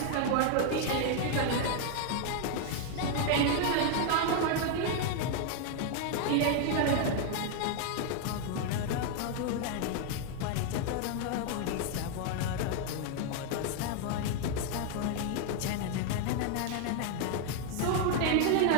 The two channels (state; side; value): different; both; correlation 0.00